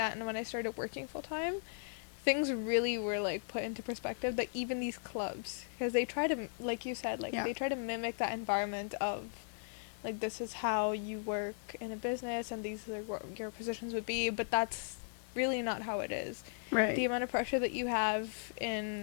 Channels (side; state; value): right; silent; 53 dB below the other